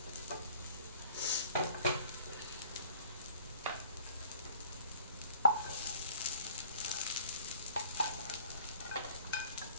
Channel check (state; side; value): inverted; both; correlation -0.54